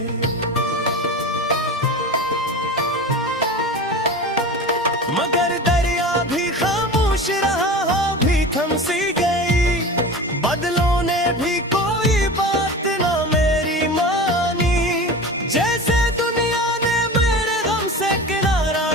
मगर दरिया भी खामोश रहा हो भी थम सी गई, बादलों ने भी कोई बात ना मेरी मानी, जैसे दुनिया ने मेरे गम से किनारा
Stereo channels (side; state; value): both; normal; correlation 0.31